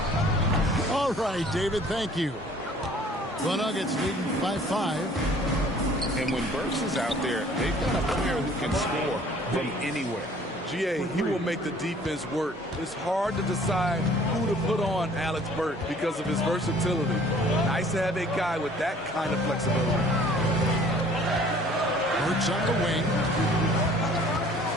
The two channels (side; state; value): both; normal; correlation 0.54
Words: All right, David, thank you. The Nuggets leading by 5. And when Burks is out there, they've got a player who can score from anywhere. GA, he will make the defense work. It's hard to decide who to put on Alex Burke because of his versatility. Nice to have a guy with that kind of flexibility. Burks on the wing.